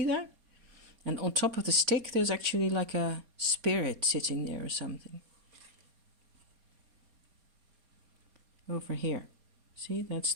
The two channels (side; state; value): left; late; 4.3 ms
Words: that? And on top of the stick, there's actually like a spirit sitting there or something. Over here. See, that's